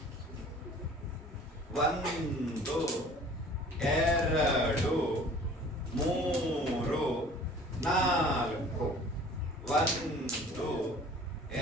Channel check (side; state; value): both; normal; correlation 0.48